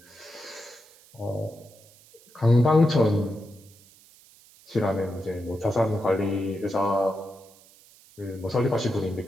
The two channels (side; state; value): right; noise; hiss, 26 dB below the sound